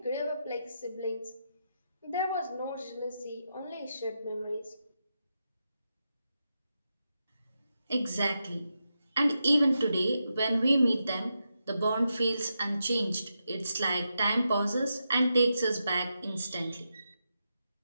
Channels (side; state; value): both; inverted; correlation -0.86